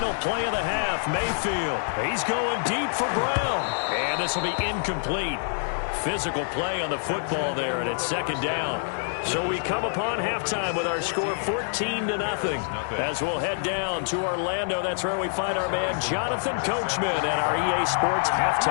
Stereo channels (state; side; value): silent; right; digital silence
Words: play of the half. Mayfield, he's going deep for Brown. And this will be incomplete. Physical play on the football there, and it's second down. So we come upon halftime with our score 14-0 as we'll head down to Orlando. That's where we find our man Jonathan Coachman and our EA Sports